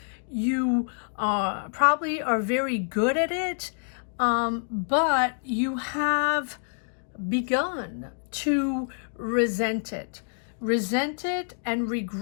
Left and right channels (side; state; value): right; silent; digital silence